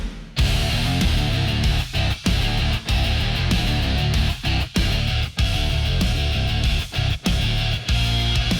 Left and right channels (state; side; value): identical; both; correlation 1.00